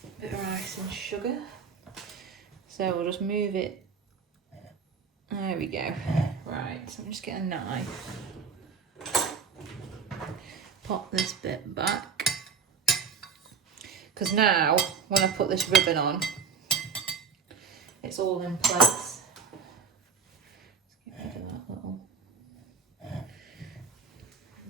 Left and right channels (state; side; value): quieter; left; 5.8 dB